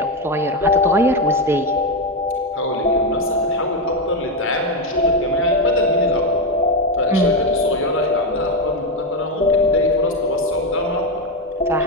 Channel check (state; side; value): normal; both; correlation 0.09